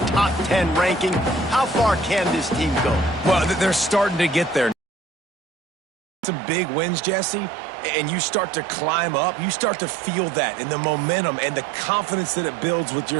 top 10 ranking. How far can this team go? Well, they're starting to get there. Some big wins, Jesse, and you start to climb up. You start to feel that and the momentum and the confidence that it builds with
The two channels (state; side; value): drops out; left; at 4.8 s